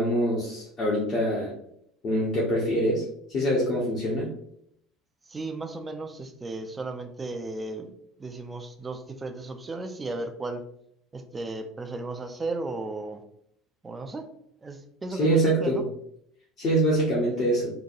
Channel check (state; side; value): normal; both; correlation 0.35